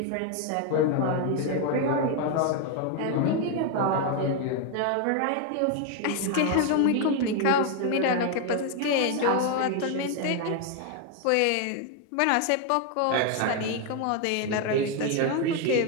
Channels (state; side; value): different; both; correlation 0.01